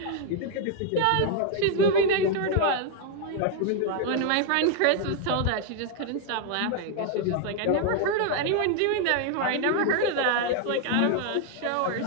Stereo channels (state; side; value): different; both; correlation 0.00